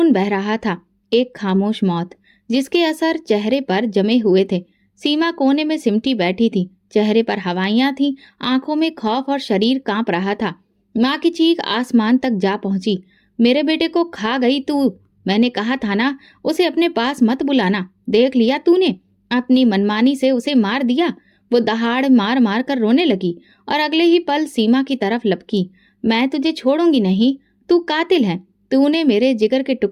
बह रहा था। एक खामोश मौत जिसके असर चेहरे पर जमे हुए थे। सीमा कोने में सिमटी बैठी थी, चेहरे पर हवाइयां थीं, आंखों में खौफ और शरीर कांप रहा था। माँ की चीख आसमान तक जा पहुंची। मेरे बेटे को खा गई तू। मैंने कहा था ना उसे अपने पास मत बुलाना। देख लिया तूने, अपनी मनमानी से उसे मार दिया। वो दहाड़ मार मार कर रोने लगी और अगले ही पल सीमा की तरफ लपकी। मैं तुझे छोड़ूंगी नहीं, तू कातिल है। तूने मेरे जिगर के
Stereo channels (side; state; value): both; identical; correlation 1.00